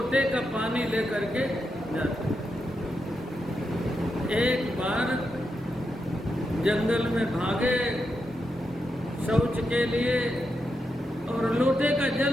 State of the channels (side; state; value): both; normal; correlation 0.85